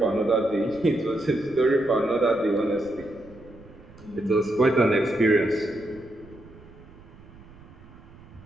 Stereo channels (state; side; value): noise; right; rumble, 21 dB below the sound